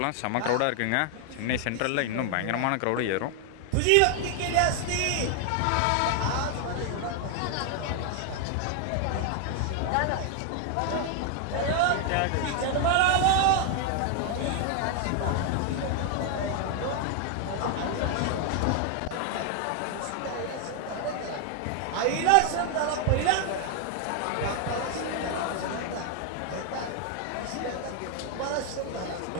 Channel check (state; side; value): different; both; correlation 0.00